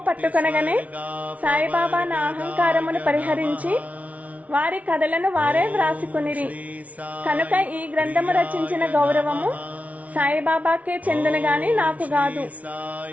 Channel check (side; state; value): left; late; 0.069 ms